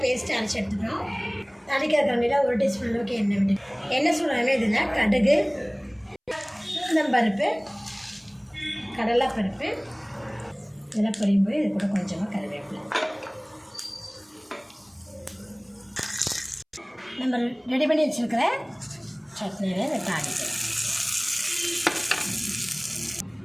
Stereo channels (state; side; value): identical; both; correlation 1.00